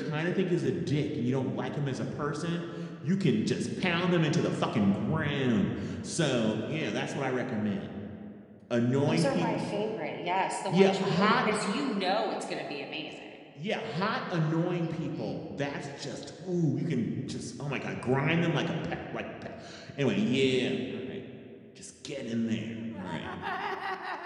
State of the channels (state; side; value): identical; both; correlation 1.00